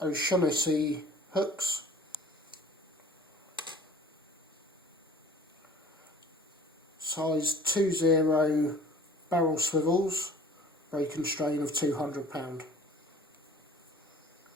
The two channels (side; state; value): both; normal; correlation 0.48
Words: O'Shaughnessy hooks, size 2/0 barrel swivels, break and strain of 200 pound.